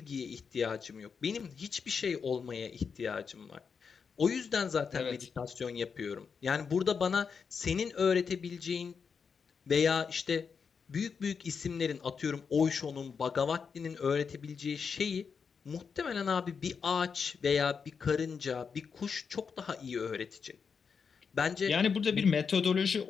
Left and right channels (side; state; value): right; quieter; 6.0 dB